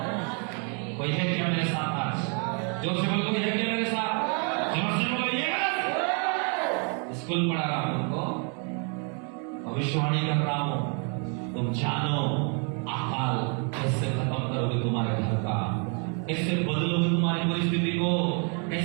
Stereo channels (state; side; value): quieter; left; 38.9 dB